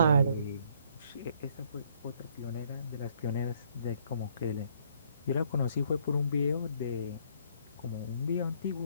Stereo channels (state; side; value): inverted; both; correlation -0.66